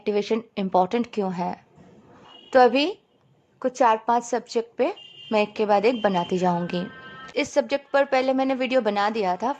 important क्यों है। तो अभी कुछ 4-5 सब्जेक्ट पे मैं एक के बाद एक बनाती जाऊंगी। इस सब्जेक्ट पर पहले मैंने वीडियो बना दिया था,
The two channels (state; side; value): identical; both; correlation 1.00